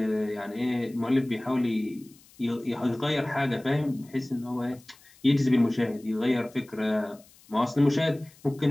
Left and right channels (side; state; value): left; noise; hiss, 27 dB below the sound